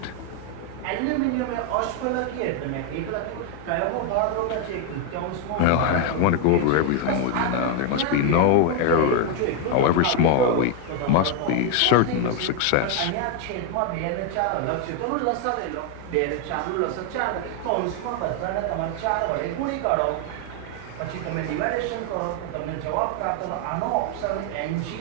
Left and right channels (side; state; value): both; different; correlation 0.01